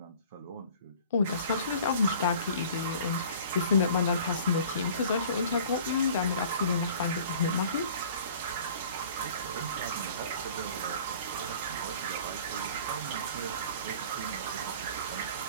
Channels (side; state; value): both; inverted; correlation -0.47